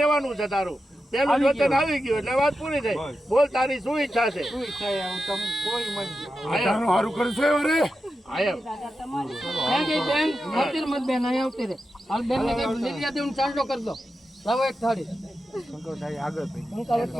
છે તારું. પેલું વચન આવી ગયું એટલે વાત પૂરી થઈ. બોલ તારી શું ઈચ્છા છે? શું ઈચ્છા છે? હું તમને કોઈ મત સારું કરશે અરે આયમ બેન મોતી મત બેન અહીં આવતી રે હાલ બેન ને લીલિયા દેવ ચાંદલો કરી દો. લાવો એક થાળી શંકરભાઈ આગળ ભાઈ હું કાલે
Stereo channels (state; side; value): normal; both; correlation 0.90